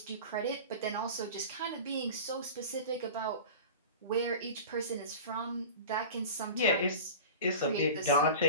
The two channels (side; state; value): both; inverted; correlation -0.34